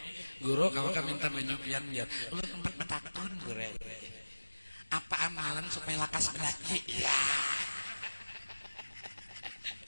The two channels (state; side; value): inverted; both; correlation -1.00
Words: guru kalau kami minta menyupian biar lu tempat betakun guru apa amalan supaya lakas belaki ya